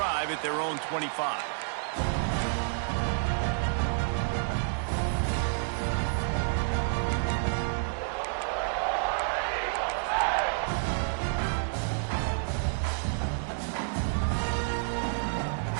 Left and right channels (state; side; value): silent; left; 58 dB below the other